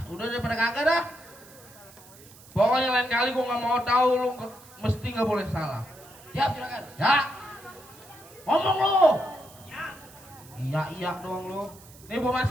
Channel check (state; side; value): noise; right; hiss, 22 dB below the sound